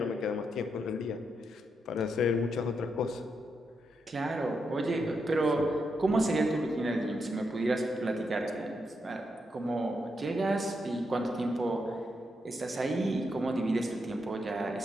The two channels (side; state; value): both; normal; correlation 0.82